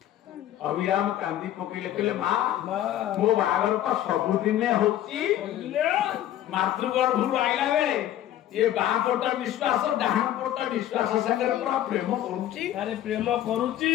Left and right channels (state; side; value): quieter; right; 12.4 dB